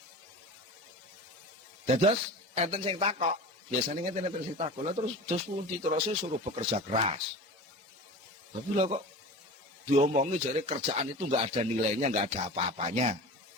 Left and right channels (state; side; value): normal; both; correlation 0.33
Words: Dados enten sing takok, biasanya enten sing takok, terus pundi terus suruh bekerja keras. Tapi lah kok diomongi jadi kerjaan itu nggak ada nilainya, nggak ada apa-apanya.